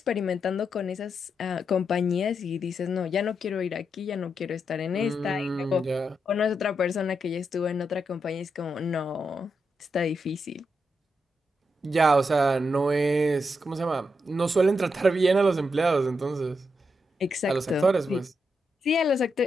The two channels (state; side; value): normal; both; correlation 0.83